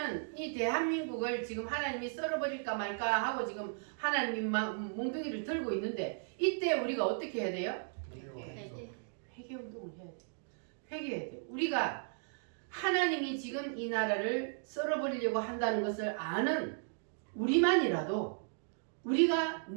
이 대한민국을 지금 하나님이 썰어버릴까 말까 하고 지금 하나님이 몽둥이를 들고 있는데, 이때 우리가 어떻게 해야 돼요? 회개 운동을 해야 돼요. 회개해야 돼요. 우리가 하나님이 지금 이 나라를 썰어버리려고 한다는 것을 아는 우리만이라도, 우리가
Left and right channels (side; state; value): left; silent; digital silence